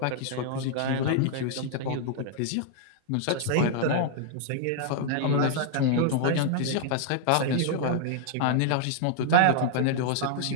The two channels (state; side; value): different; both; correlation -0.01